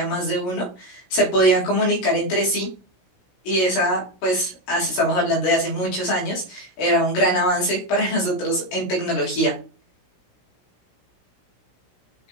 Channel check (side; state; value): right; late; 16 ms